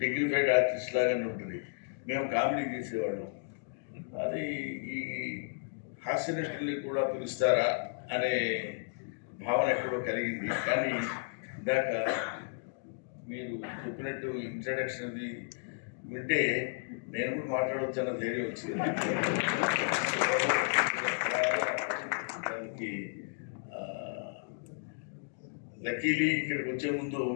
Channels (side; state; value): right; silent; digital silence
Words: డిగ్నిఫైడ్ ఆర్టిస్ట్ లాగానే ఉంటుంది. మేము కామెడీ చేసేవాళ్ళం. అది ఈ హాస్య నటుల్ని కూడా పిలుస్తారా అనే భావన ఎక్కడో కలిగింది. కానీ ఇందాక మీరు చెప్పినట్టు ఇంట్రడక్షన్ అది వింటే నేను కూడా మాట్లాడవచ్చు అన్న ధైర్యం వచ్చింది. దానికి లక్కీలీ ఇక్కడికి వచ్చే ముందు